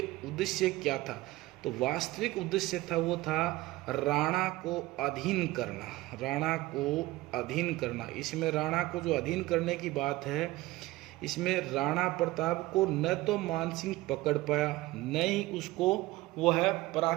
उद्देश्य क्या था, तो वास्तविक उद्देश्य था वो था राणा को अधीन करना। इसमें राणा को जो अधीन करने की बात है, इसमें राणा प्रताप को न तो मान सिंह पकड़ पाया, न ही उसको वो है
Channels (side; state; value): left; quieter; 18.7 dB